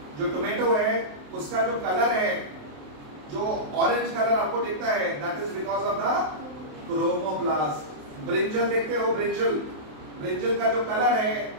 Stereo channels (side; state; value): left; late; 27 ms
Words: जो टोमेटो है उसका जो कलर है, जो ऑरेंज कलर आपको दिखता है, that is because of the chromoplast. Brinjal देखते हो, ब्रिंजल का जो कलर है